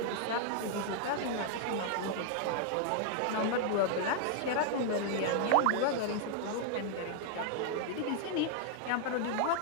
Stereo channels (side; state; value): both; different; correlation 0.00